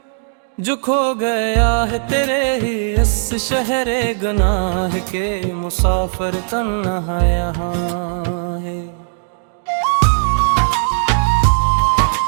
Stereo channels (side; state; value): left; silent; digital silence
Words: जो खो गया है तेरे ही इस शहरे गुनाह के, मुसाफिर तन्हा यहाँ है।